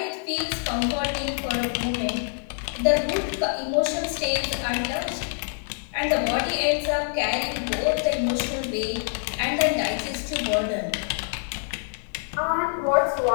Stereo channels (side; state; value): right; silent; 61 dB below the other